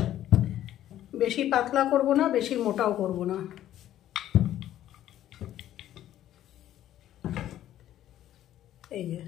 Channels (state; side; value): quieter; right; 12.4 dB